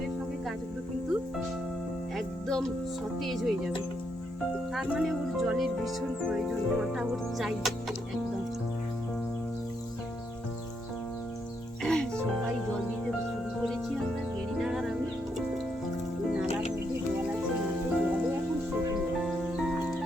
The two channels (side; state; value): both; normal; correlation 0.78